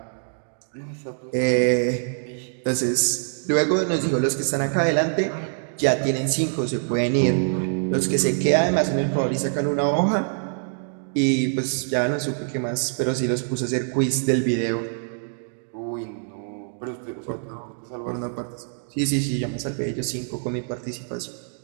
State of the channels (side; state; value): left; silent; digital silence